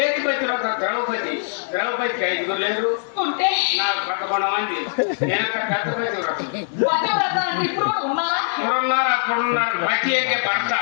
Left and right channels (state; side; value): silent; right; digital silence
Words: పతివ్రత ద్రౌపది. ద్రౌపదికి 5 లేరు ఉంటే నాకు 11 మంది. నేను పెద్ద పతివ్రత. ఇప్పుడు అప్పుడున్నారు. పతి అంటే భర్త.